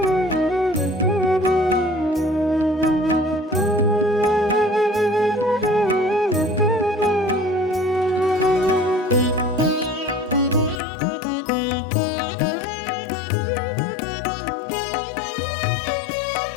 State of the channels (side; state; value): right; drops out; at 10.8 s